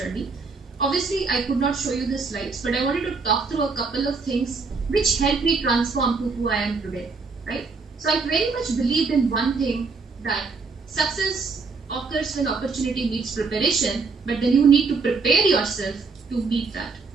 Obviously, I could not show you the slides, but I wanted to talk through a couple of things which helped me transform to who I am today, right? So I very much believed in one thing, that success occurs when opportunity meets preparation, but then you need to prepare yourself to meet that,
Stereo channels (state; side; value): quieter; left; 4.4 dB